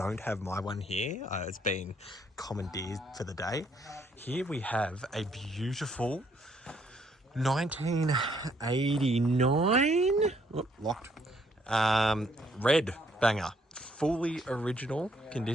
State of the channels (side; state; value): both; normal; correlation 0.69